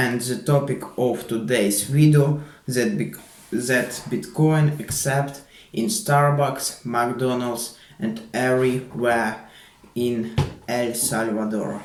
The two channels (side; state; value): both; identical; correlation 1.00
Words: the topic of today's video that Bitcoin accept in Starbucks, McDonald's and everywhere in El Salvador.